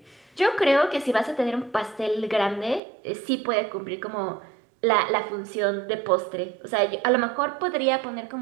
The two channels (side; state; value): left; drops out; at 2.8 s